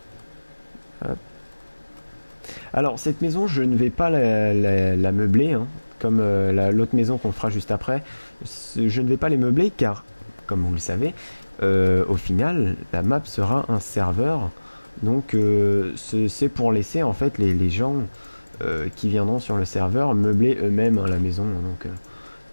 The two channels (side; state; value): both; inverted; correlation -1.00